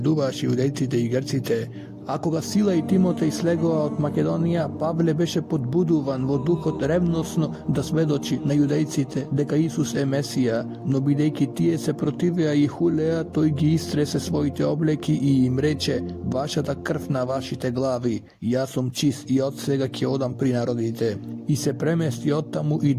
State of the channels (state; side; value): identical; both; correlation 1.00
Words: јудејците и грците. А кога Сила и Тимотеј слегоа од Македонија, Павле беше подбудуван во духот ревносно да сведочи на јудејците дека Исус е Месија, но бидејќи тие се противеа и хулеа, тој ги истресе своите облеки и им рече: вашата крв на вашите глави, јас сум чист и од сега ќе одам при народите. И се премести оттаму и